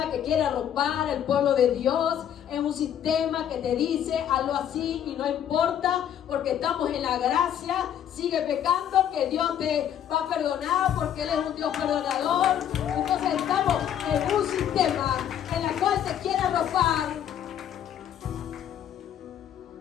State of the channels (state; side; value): quieter; right; 9.8 dB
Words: que quiere arropar al pueblo de Dios, es un sistema que te dice hazlo así y no importa, porque estamos en la gracia, sigue pecando que Dios te va a perdonar porque Él es un Dios perdonador. Entonces estamos en un sistema en el cual te quiere arropar,